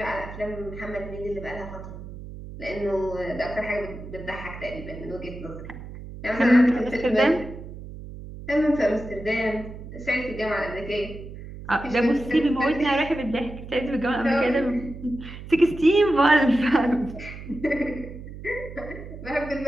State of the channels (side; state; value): right; noise; hum, 12 dB below the sound